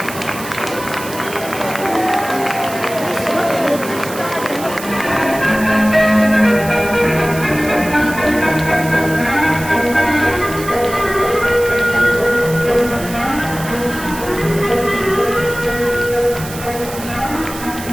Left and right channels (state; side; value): noise; right; hiss, 12 dB below the sound